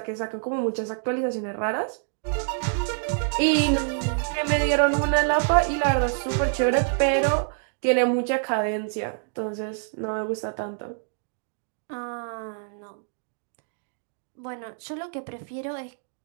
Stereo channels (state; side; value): silent; left; digital silence